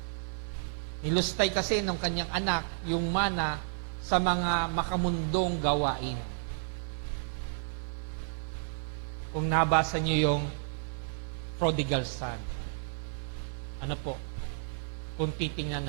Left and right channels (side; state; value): left; silent; digital silence